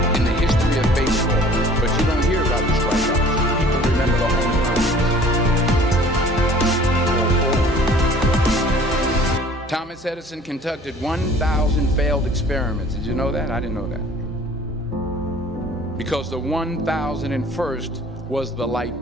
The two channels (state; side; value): normal; both; correlation 0.51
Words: in the history of baseball. But you don't hear about the strikeouts. People remember the home runs. Thomas Edison conducted 1,000 failed experiments. Did you know that? I didn't know that. Because the 1,001st was the light